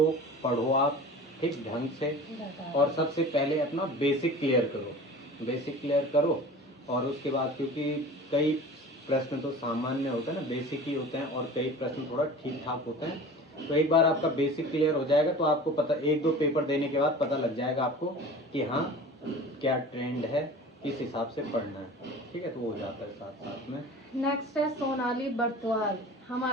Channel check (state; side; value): normal; both; correlation 0.39